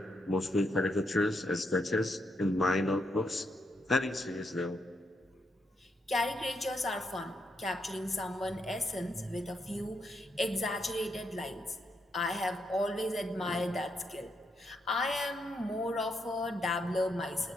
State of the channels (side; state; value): both; normal; correlation 0.79